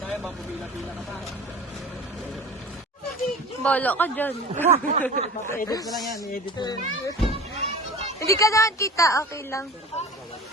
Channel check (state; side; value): normal; both; correlation 0.38